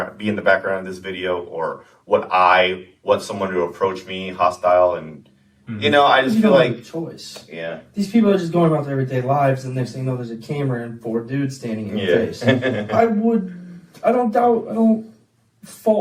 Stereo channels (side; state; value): both; identical; correlation 1.00